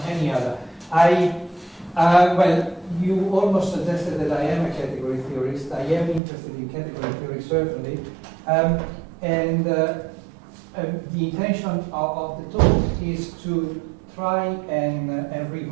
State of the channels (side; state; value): left; drops out; at 6.2 s